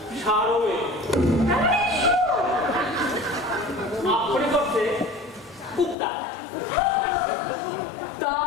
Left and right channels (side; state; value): right; drops out; at 6.0 s